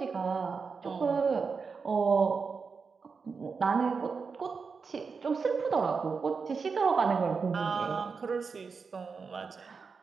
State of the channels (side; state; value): left; quieter; 5.2 dB